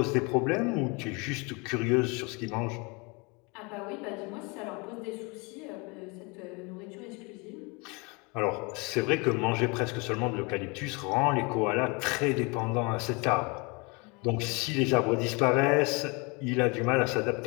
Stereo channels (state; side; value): quieter; right; 29.1 dB